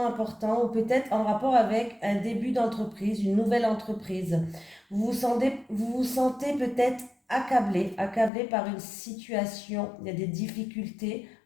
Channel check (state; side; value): drops out; right; at 8.3 s